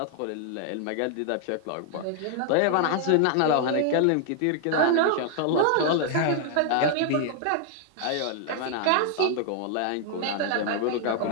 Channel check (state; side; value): different; both; correlation 0.00